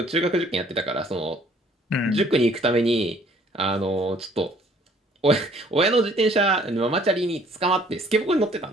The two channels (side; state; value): both; normal; correlation 0.59